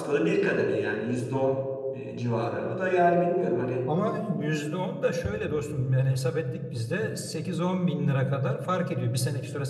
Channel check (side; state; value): both; identical; correlation 1.00